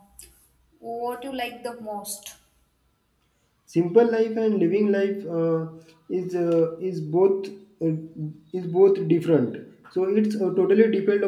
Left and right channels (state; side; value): identical; both; correlation 1.00